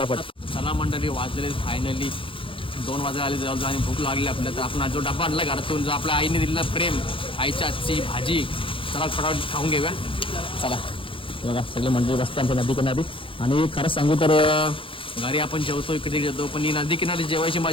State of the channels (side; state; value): right; late; 0.25 ms